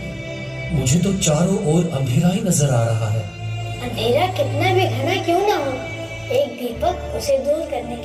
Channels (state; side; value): identical; both; correlation 1.00